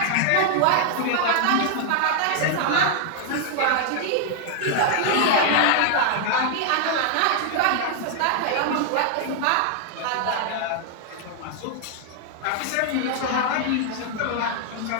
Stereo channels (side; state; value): both; different; correlation 0.00